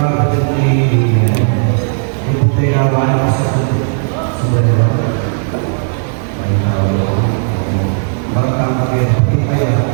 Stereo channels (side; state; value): left; silent; digital silence